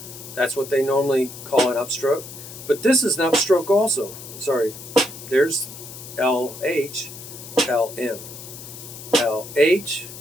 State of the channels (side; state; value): left; noise; hiss, 13 dB below the sound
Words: That's what they normally call an upstroke. But this is an upstroke also. Sorry. There's LH, LM. LH,